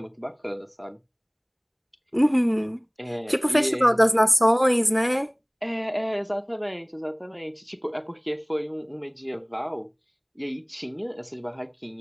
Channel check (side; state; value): both; identical; correlation 1.00